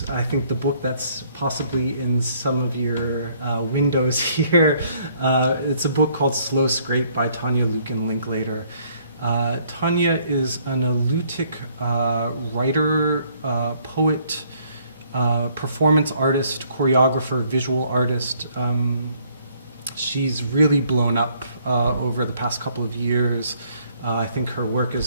I think, the book that's possibly in some of your windows here. It's a book called Slow Scrape by Tanya Lucan Linklater. Tanya is an elutic writer, poet, performance artist, choreographer, visual artist. She's really blown up over the past couple of years. I think her work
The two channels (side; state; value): both; inverted; correlation -0.64